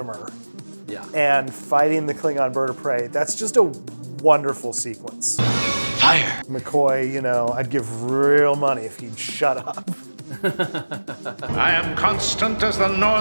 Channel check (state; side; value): inverted; both; correlation -1.00